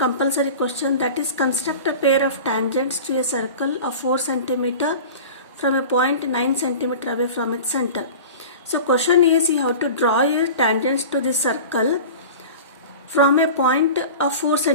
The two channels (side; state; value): both; inverted; correlation -0.35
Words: question, that is construct a pair of tangents to a circle of 4 cm from a point 9 cm away from its center. So question is, you have to draw a tangents to this circle from a point of 4